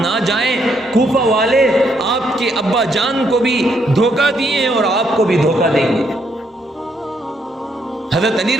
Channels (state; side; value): normal; both; correlation 0.74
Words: جائیں، کوفہ والے آپ کے ابا جان کو بھی دھوکہ دیے ہیں اور آپ کو بھی دھوکہ دیں گے۔ حضرت علی